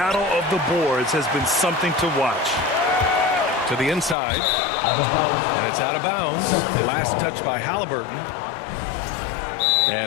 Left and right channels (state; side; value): drops out; right; at 4.2 s